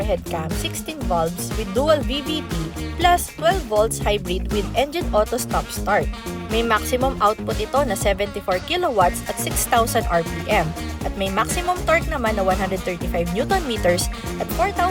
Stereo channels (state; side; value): identical; both; correlation 1.00